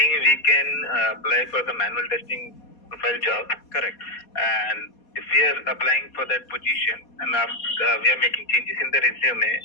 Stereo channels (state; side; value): late; right; 4.2 ms